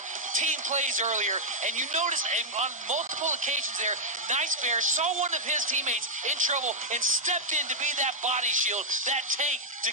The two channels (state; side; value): normal; both; correlation -0.03